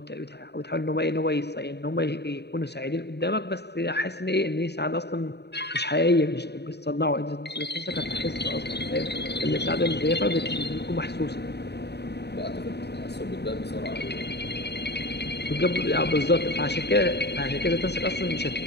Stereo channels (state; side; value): late; right; 0.49 ms